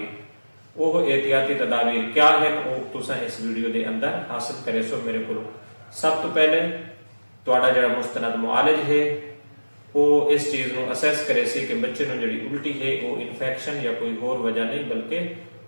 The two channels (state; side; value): inverted; both; correlation -1.00